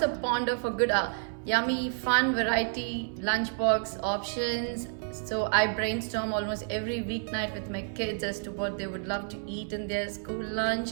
ponder for good, yummy, fun variety lunchbox options. So I brainstorm almost every weeknight with my kids as to what they would love to eat in their school lunch.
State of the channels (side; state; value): left; silent; 58 dB below the other